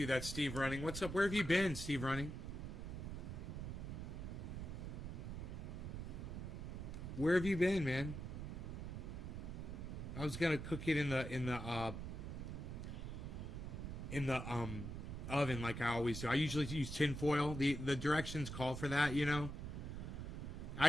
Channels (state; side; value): noise; right; rumble, 6 dB below the sound